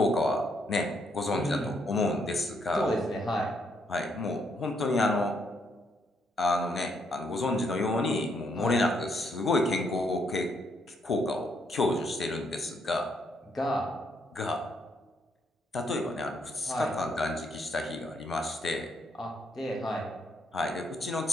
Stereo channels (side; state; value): both; normal; correlation 0.74